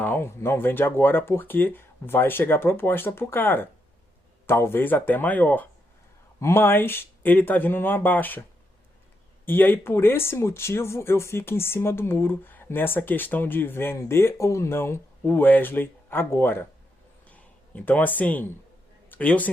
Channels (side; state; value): both; normal; correlation 0.81